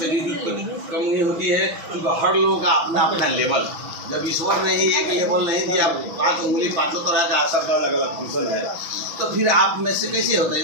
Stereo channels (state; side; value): late; left; 6.1 ms